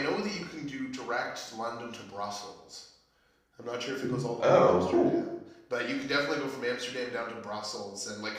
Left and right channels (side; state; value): both; identical; correlation 1.00